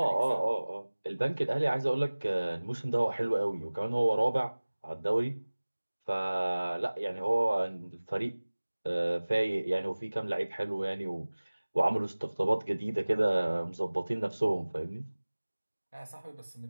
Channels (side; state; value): both; inverted; correlation -1.00